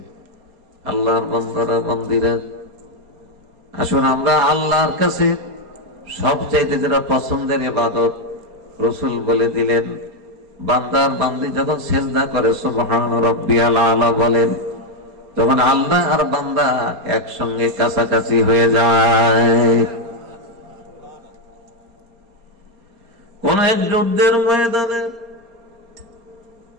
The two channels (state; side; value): late; left; 4.3 ms